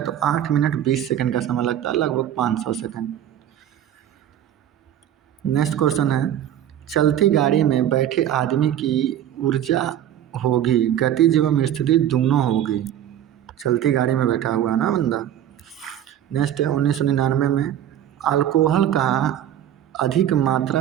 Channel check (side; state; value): left; quieter; 10.9 dB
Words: तो 8 मिनट 20 सेकंड का समय लगता है, लगभग 500 सेकंड। नेक्स्ट क्वेश्चन है, चलती गाड़ी में बैठे आदमी की ऊर्जा होगी गतिज एवं स्थिति दोनों होगी। चलती गाड़ी में बैठा हुआ है ना बंदा। नेक्स्ट है, 1999 में अल्कोहल का अधिक मात्रा